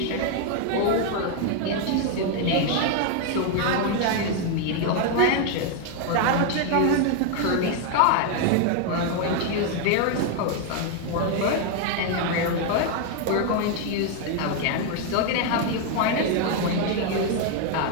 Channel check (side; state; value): both; different; correlation 0.01